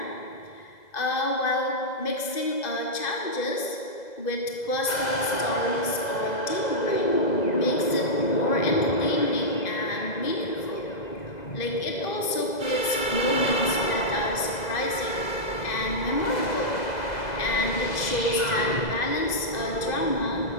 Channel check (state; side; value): late; right; 2.0 ms